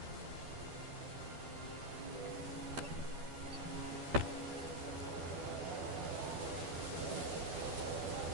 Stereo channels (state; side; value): late; left; 12 ms